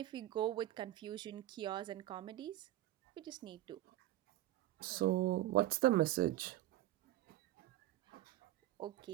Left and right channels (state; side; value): quieter; left; 14.8 dB